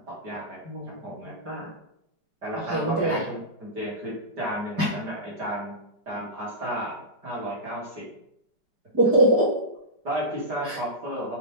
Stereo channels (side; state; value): left; late; 5.1 ms